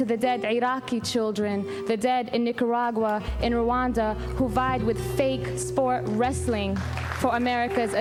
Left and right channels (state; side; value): identical; both; correlation 1.00